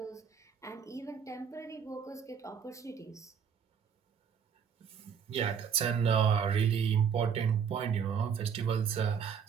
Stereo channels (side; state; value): left; quieter; 7.2 dB